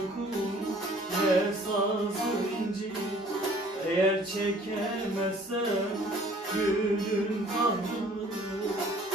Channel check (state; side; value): normal; both; correlation 0.54